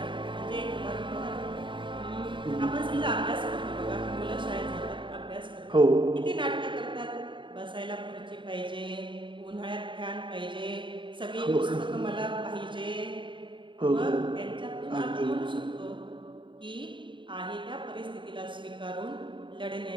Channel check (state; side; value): late; left; 0.24 ms